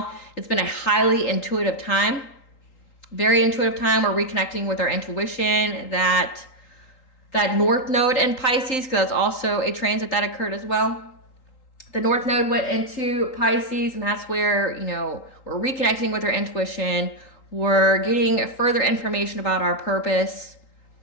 it's been a highly intuitive time, very intuitive time. We're reconnecting with our intuition, that North Node in Pisces, because that's also a transit that occurred as well. The North Node went into Pisces, and that's where, we're reconnecting with our intuition. We're getting further information about our purpose.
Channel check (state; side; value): late; right; 3.8 ms